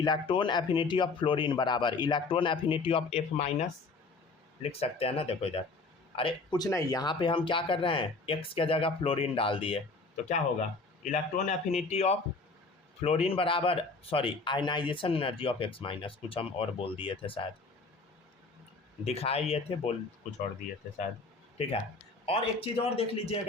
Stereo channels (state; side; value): quieter; right; 3.9 dB